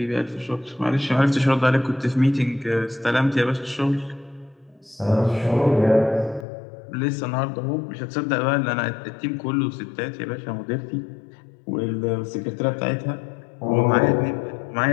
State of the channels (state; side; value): drops out; right; at 6.5 s